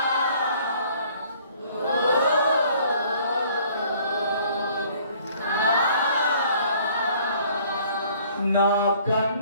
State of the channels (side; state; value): both; inverted; correlation -0.57